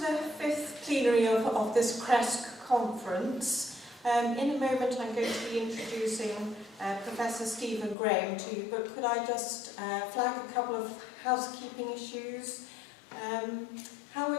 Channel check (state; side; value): drops out; right; at 8.0 s